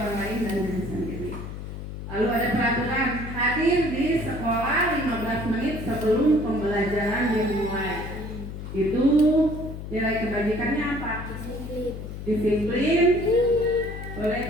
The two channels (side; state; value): left; noise; hum, 9 dB below the sound